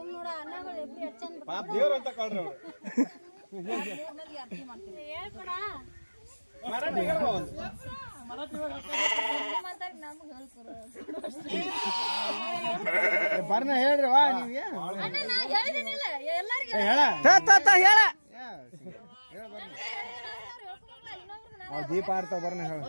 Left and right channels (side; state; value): both; inverted; correlation -1.00